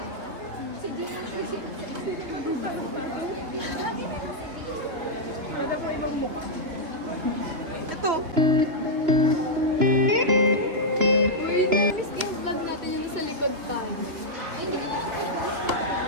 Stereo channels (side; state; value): left; late; 3.1 ms